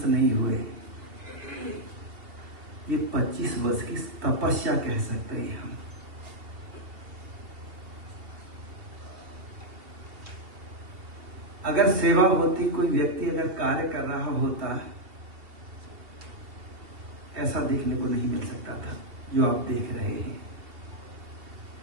नहीं हुए, ये 25 वर्ष की तपस्या कह सकते हैं हम। अगर सेवा होती, कोई व्यक्ति अगर कार्य कर रहा होता, ऐसा देखने को नहीं मिल सकता था जो आप देख रहे हैं।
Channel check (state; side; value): late; left; 2.7 ms